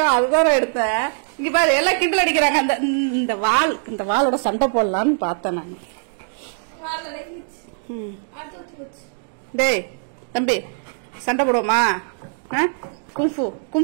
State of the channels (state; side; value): silent; left; digital silence